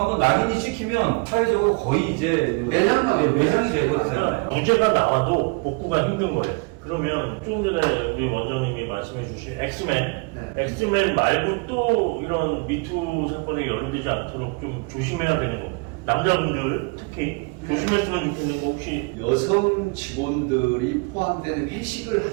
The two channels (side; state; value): left; quieter; 30.0 dB